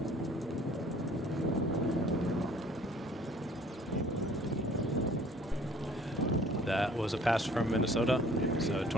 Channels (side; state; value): both; normal; correlation 0.54